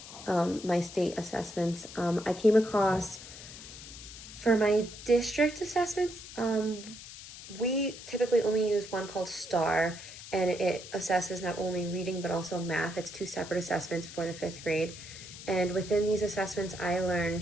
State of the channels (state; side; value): noise; left; hiss, 14 dB below the sound